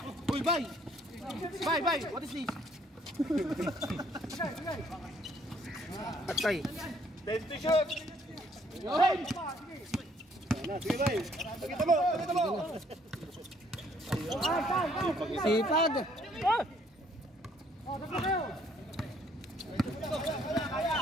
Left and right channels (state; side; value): normal; both; correlation 0.64